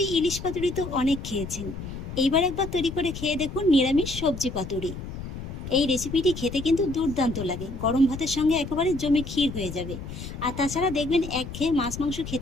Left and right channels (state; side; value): noise; left; rumble, 9 dB below the sound